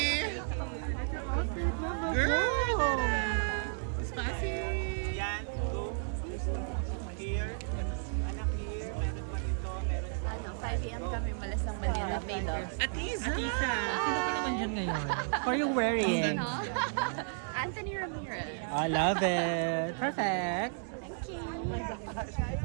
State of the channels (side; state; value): left; silent; digital silence